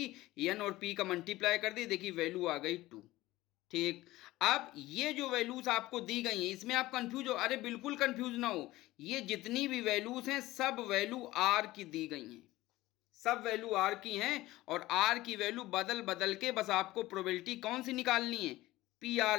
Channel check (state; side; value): quieter; right; 17.7 dB